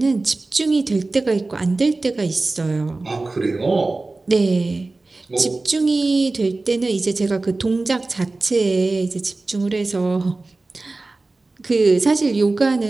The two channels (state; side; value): quieter; left; 3.3 dB